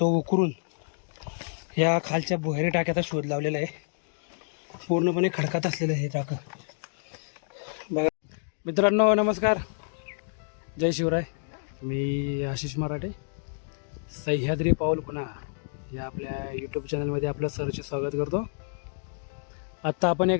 उकरून या खालच्या भुहेरी टाक्याचा शोध लावलेला आहे. पूर्णपणे खडकात असलेलं हे टाकं बघा. मित्रांनो नमस्कार, जय शिवराय. मी आशिष मराठे, सह्याद्री पाऊल खुणा या आपल्या यूट्यूब चॅनलमध्ये आपलं सरचे स्वागत करतो. आत्ता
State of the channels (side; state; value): right; silent; digital silence